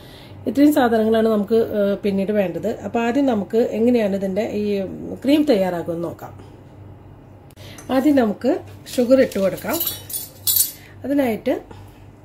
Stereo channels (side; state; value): both; identical; correlation 1.00